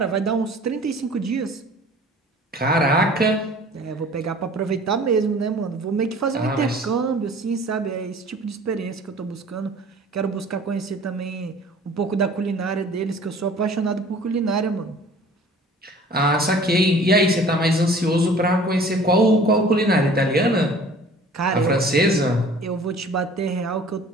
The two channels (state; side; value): normal; both; correlation 0.48